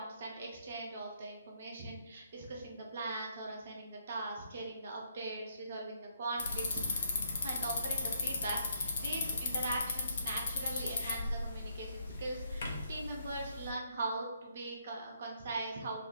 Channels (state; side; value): inverted; both; correlation -0.71